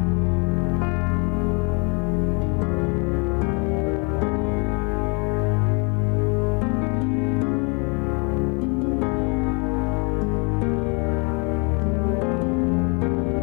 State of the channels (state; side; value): quieter; right; 33.3 dB